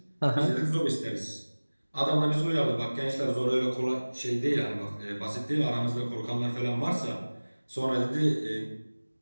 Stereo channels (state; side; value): inverted; both; correlation -1.00